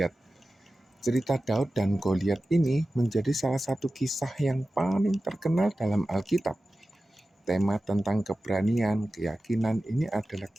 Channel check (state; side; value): normal; both; correlation 0.95